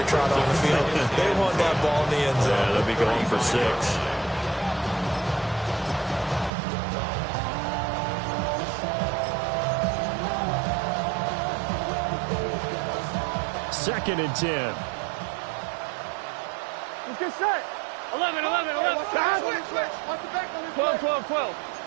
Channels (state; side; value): drops out; left; at 6.5 s